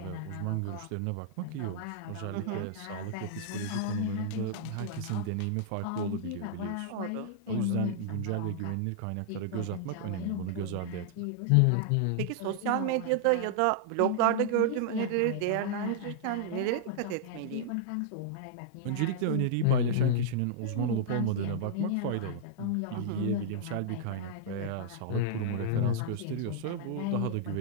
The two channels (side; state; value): both; different; correlation -0.01